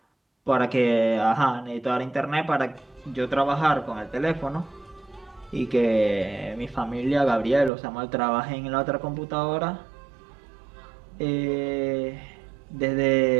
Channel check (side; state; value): left; drops out; at 7.7 s